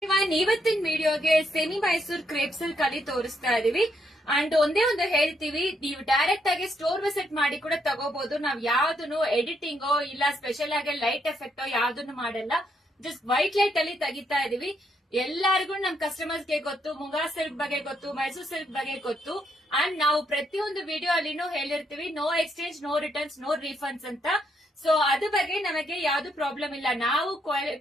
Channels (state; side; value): normal; both; correlation 0.76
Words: ಇವತ್ತಿನ ವಿಡಿಯೋಗೆ ಸೆಮಿ ಮೈಸೂರ್ ಕ್ರೇಪ್ಸ್ ಅಲ್ಲಿ ಕಲಿ ತೋರಿಸ್ತಾ ಇದೀವಿ. ಅಂಡ್ ಒಂದೇ ಒಂದು ಹೇಳ್ತೀವಿ, ನೀವು ಡೈರೆಕ್ಟ್ ಆಗಿ ಸ್ಟೋರ್ ವಿಸಿಟ್ ಮಾಡಿ ಕೂಡ ತಗೋಬಹುದು. ನಾವ್ ಯಾವ್ದನ್ನು ಎಡಿಟಿಂಗೋ ಇಲ್ಲ ಸ್ಪೆಷಲ್ ಆಗಿ ಲೈಟ್ ಎಫೆಕ್ಟೋ ಯಾವ್ದನ್ನು ಮಾಡಲ್ಲ. ಜಸ್ಟ್ ವೈಟ್ ಲೈಟ್ ಅಲ್ಲಿ ತೆಗಿತಾ ಇದೀವಿ. ಎಲ್ಲರಿಗೂ ನಮ್ ಕಸ್ಟಮರ್ಸ್ ಗೆ ಗೊತ್ತು, ಮುಂಗಾ ಸಿಲ್ಕ್ ಬಗ್ಗೆ ಗೊತ್ತು, ಮೈಸೂರ್ ಸಿಲ್ಕ್ ಬಗ್ಗೆ ಗೊತ್ತು. ಅಂಡ್ ನಾವು ಪ್ರತಿಯೊಂದು ವಿಡಿಯೋ ಅಲ್ಲಿನೂ ಹೇಳಿರ್ತೀವಿ, no exchange, no returns, no refunds ಅಂತ. ಸೊ ಅದ್ರ ಬಗ್ಗೆ ನಮಗೆ ಯಾವ್ದು ಪ್ರಾಬ್ಲಮ್ ಇಲ್ಲ. ನಾವು